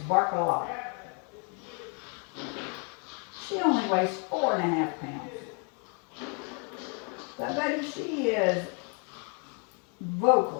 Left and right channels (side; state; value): right; quieter; 37.1 dB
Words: Bark a Lot. She only weighs 4.5 pounds. But buddy, she is